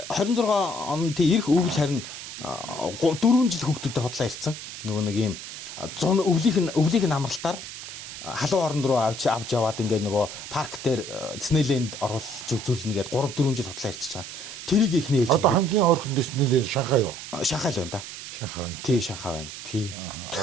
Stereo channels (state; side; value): noise; right; hiss, 10 dB below the sound